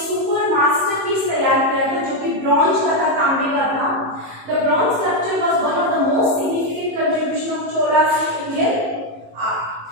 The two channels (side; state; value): left; late; 18 ms